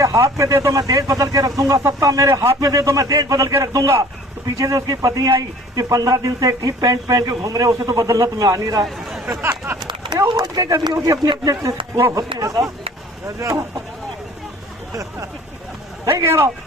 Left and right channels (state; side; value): normal; both; correlation 0.49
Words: हाथ में दे दो मैं देश बदल के रख दूंगा, सत्ता मेरे हाथ में दे दो मैं देश बदल के रख दूंगा। तो पीछे से उसकी पत्नी आई कि 15 दिन से एक ही पैंट पहन के घूम रहे, उसे तो बदलना तुम्हें आ नहीं रहा है। वो के कभी होगी अपने अपने वो होते हैं साहब। सही कह रहा हूँ।